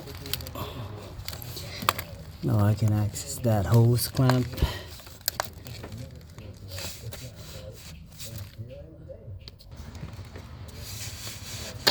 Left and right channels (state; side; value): identical; both; correlation 1.00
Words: Now I can access that hose clamp.